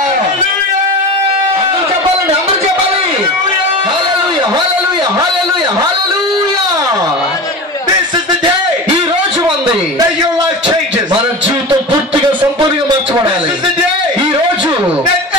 అందరూ చెప్పాలండి, అందరూ చెప్పాలి. హల్లెలూయా, హల్లెలూయా, హల్లెలూయా, హల్లెలూయా. This is the day ఈ రోజు ఉంది that your life changes. మన జీవితం పూర్తిగా సంపూర్ణంగా మార్చబడాలి. This is the day ఈ రోజు that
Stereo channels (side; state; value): both; normal; correlation 0.29